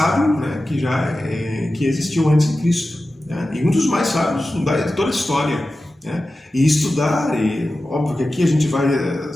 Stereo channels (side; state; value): both; normal; correlation 0.94